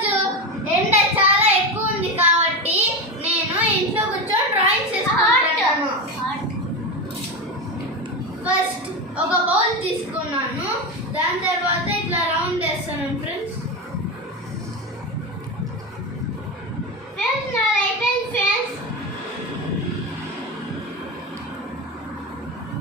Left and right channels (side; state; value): both; normal; correlation 0.18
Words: ఎండ చాలా ఎక్కువ ఉంది కాబట్టి నేను ఇంట్లో కూర్చొని డ్రాయింగ్ చేసుకుంటాను. ఫస్ట్ ఒక బౌల్ తీసుకున్నాను, దాని తర్వాత ఇట్లా రౌండ్ వేస్తాను ఫ్రెండ్స్.